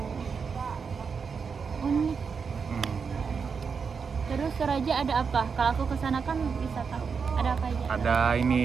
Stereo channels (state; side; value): quieter; left; 5.8 dB